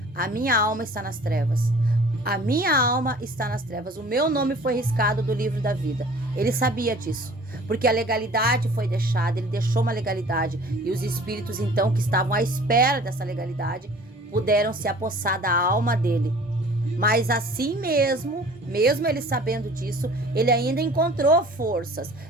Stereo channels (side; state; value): both; normal; correlation 0.48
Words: a minha alma está nas trevas. A minha alma está nas trevas. O meu nome foi riscado do livro da vida. Ele sabia disso. Porque a legalidade foi deixada, ele deixou uma legalidade. E os espíritos então que estavam à espera dessa legalidade puderam se apossar da alma dele. Mas assim mesmo ele sabendo disso, ele ainda encontrou forças.